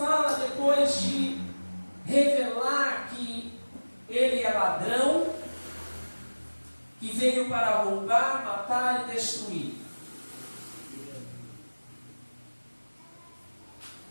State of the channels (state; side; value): inverted; both; correlation -1.00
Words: depois de revelar que ele é ladrão, que veio para roubar, matar e destruir?